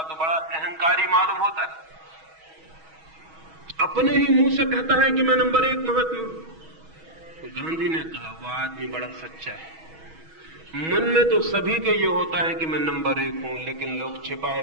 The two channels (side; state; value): left; late; 6.2 ms